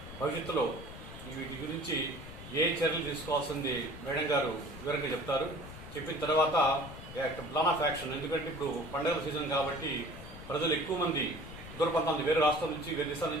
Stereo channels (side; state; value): left; noise; rumble, 13 dB below the sound